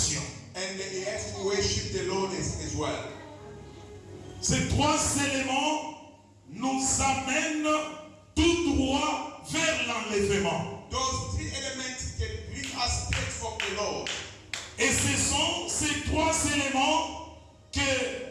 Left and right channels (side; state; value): both; identical; correlation 1.00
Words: and he has to worship the Lord as well. Ces trois éléments nous amènent tout droit vers l'enlèvement. Those three elements can bring us straight from the Lord. Et ce sont ces trois éléments